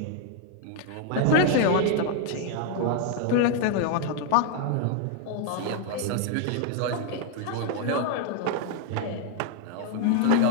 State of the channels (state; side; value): different; both; correlation 0.00